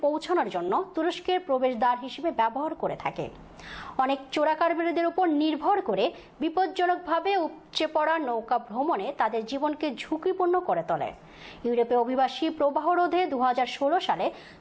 পৌঁছানোর জন্য তুরস্কের প্রবেশদ্বার হিসেবে ব্যবহার করে থাকে। অনেক চোরাকারবারিদের উপর নির্ভর করে বিপজ্জনকভাবে উপচে পড়া নৌকা ভ্রমণে তাদের জীবনকে ঝুঁকিপূর্ণ করে তোলে। ইউরোপীয় অভিবাসী প্রবাহ রোধে 2016 সালে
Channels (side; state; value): both; identical; correlation 1.00